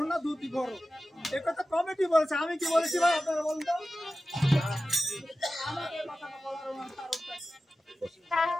না দুটি বড় এ কথা কমিটি বলেছে আমি কি বলেছি ভাই আপনারা বলুন তো আমাকে কথাটা বলার কারণটা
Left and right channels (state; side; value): normal; both; correlation 0.95